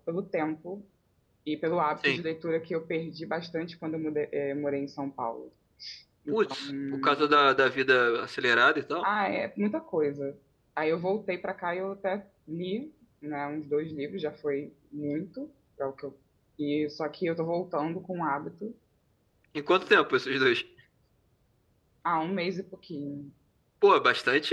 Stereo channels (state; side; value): identical; both; correlation 1.00